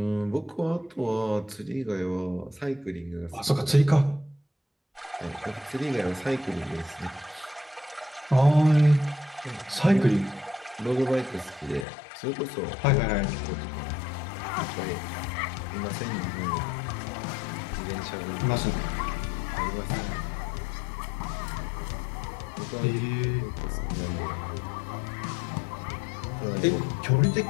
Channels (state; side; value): drops out; right; at 11.9 s